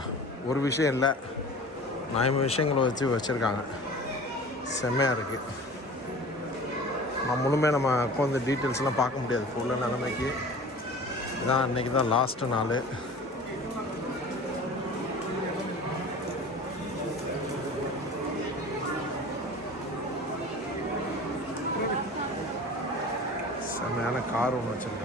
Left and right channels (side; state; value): both; normal; correlation 0.40